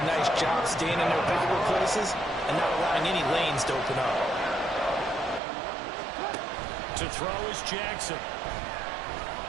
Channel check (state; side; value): drops out; left; at 5.4 s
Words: nice job staying in their visible places and not allowing any lanes to open up. To throw is Jackson.